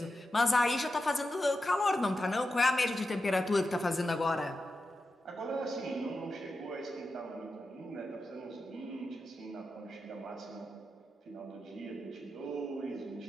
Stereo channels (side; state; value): both; normal; correlation 0.90